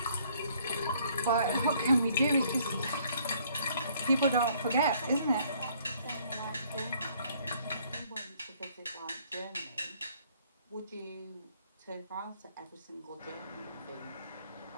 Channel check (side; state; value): both; inverted; correlation -0.62